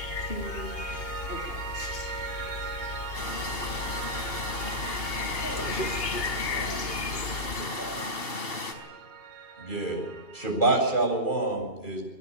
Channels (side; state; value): right; late; 2.7 ms